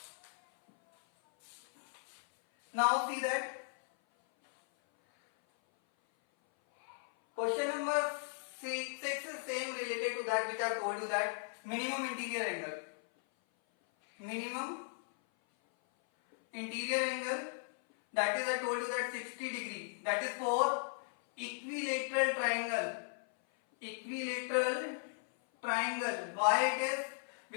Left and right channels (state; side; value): silent; right; 53 dB below the other